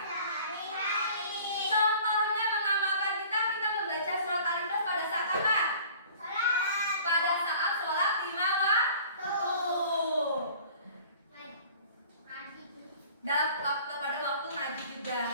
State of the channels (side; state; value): both; inverted; correlation -0.48